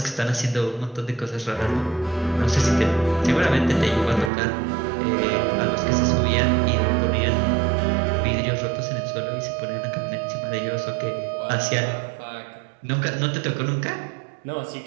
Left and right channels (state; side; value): drops out; left; at 4.3 s